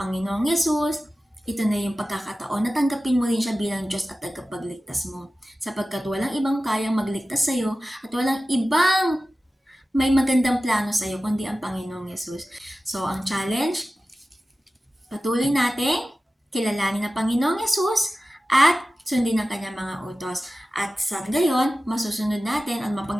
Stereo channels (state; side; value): normal; both; correlation 0.95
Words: Yesus, ito na yung pagkakataon na tanggapin mo rin siya bilang Diyos at tagapagligtas mo. Sapagkat walang ibang kayang magligtas sa iyo at walang ibang may magandang plano sa iyo kundi ang Panginoong Yesus. So, ang challenge, patuloy natin kilalanin ang Panginoong Yesus at sundin ang kanyang mga utos. At sa gayon, masusunod natin at